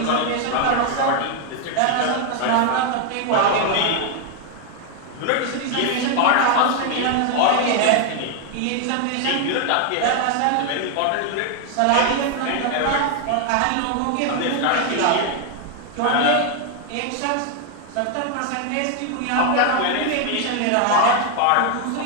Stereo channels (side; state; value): both; different; correlation 0.00